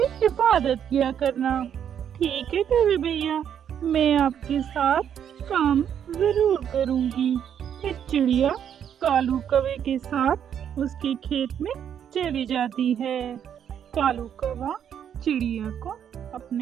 हिफाजत किया करना। ठीक है कवि भैया, मैं आपके साथ काम जरूर करूंगी। फिर चिड़िया कालू कौवे के साथ उसके खेत में चली जाती है। कालू कौवा चिड़िया को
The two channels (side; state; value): left; quieter; 8.9 dB